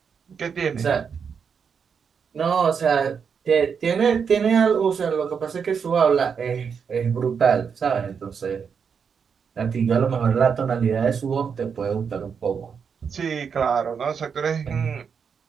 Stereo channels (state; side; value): quieter; left; 6.5 dB